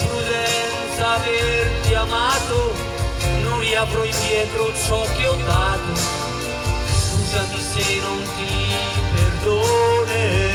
averti amato, non riavrò indietro ciò che ho dato. Scusami se non ti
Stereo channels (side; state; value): both; identical; correlation 1.00